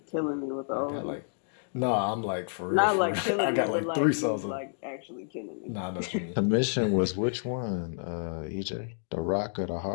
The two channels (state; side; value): silent; right; digital silence